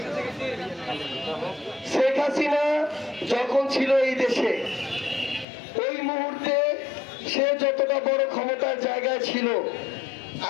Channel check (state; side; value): drops out; right; at 5.5 s